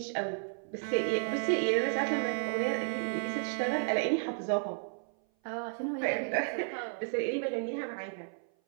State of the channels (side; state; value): left; silent; 56 dB below the other